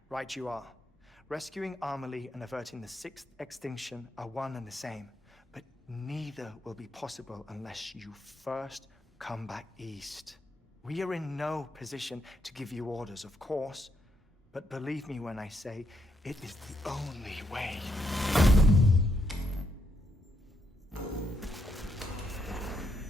Right you are. Rescuing Amelie and averting the sixth extinction are one and the same. But neither will be possible unless you first come back east. We are in no position to give you orders, of course. But believe me when I say, it is the only way.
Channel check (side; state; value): both; normal; correlation 0.77